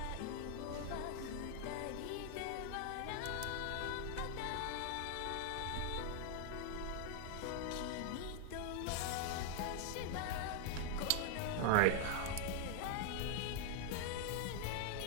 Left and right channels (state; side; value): different; both; correlation 0.00